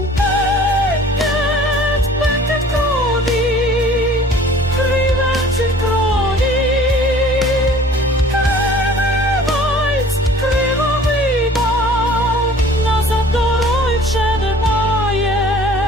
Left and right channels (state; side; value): normal; both; correlation 0.49